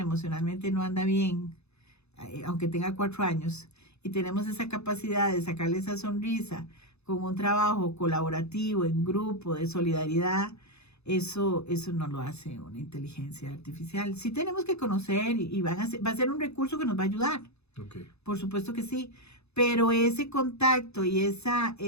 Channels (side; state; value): right; late; 0.80 ms